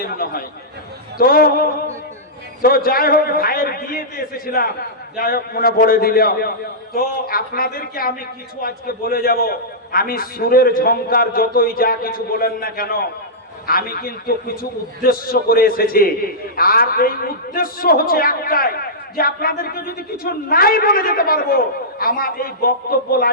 মনে হয়। তো যাই হোক, ভাইয়ের বিয়েতে এসেছিলাম, যাই হোক মনে পড়ে দিল। তো আপনাদেরকে আমি কিছু আজকে বলে যাব। আমি সুরের ঝংকার যতই যা কিছু বলেন না কেন, আমি কিন্তু কিছু উদ্দেশ্য করে এসেছি, আর এই উদ্দেশ্য হচ্ছে একটাই, যে আপনাদেরকে যদি কিছু নাই বলে যেতে পারবো, আমার এই বক্তব্য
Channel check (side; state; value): both; normal; correlation -0.14